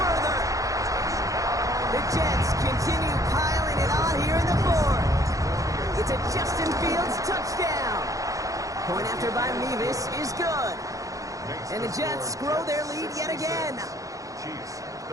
The Jets continue piling it on here in the 4th. It's a Justin Fields touchdown. Point after by Mevis is good. And the Jets grow their lead yet again. Chiefs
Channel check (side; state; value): left; late; 0.16 ms